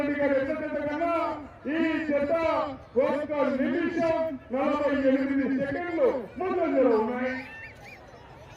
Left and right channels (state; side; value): identical; both; correlation 1.00